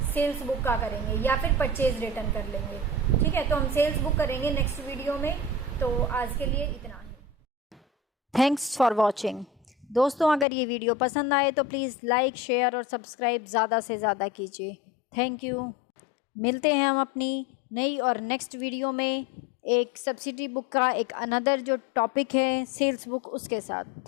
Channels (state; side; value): drops out; right; at 10.5 s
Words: सेल्स बुक का करेंगे या फिर परचेज रिटर्न कर लेंगे। ठीक है, तो हम सेल्स बुक करेंगे नेक्स्ट वीडियो में। तो आज के लिए इतना ही। Thanks for watching. दोस्तों, अगर ये वीडियो पसंद आए तो प्लीज़ लाइक, शेयर और सब्सक्राइब ज़्यादा से ज़्यादा कीजिए। Thank you. मिलते हैं हम अपनी नई और नेक्स्ट वीडियो में एक सब्सिडी बुक का एक अनदर जो टॉपिक है सेल्स बुक, उसके साथ।